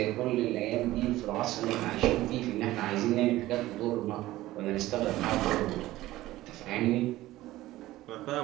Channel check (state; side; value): quieter; left; 16.5 dB